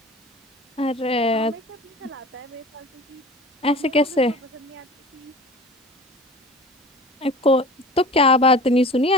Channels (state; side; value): normal; both; correlation 0.39